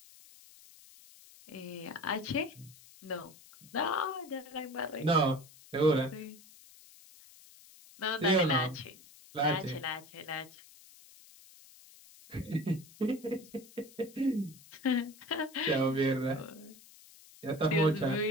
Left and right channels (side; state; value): left; noise; hiss, 22 dB below the sound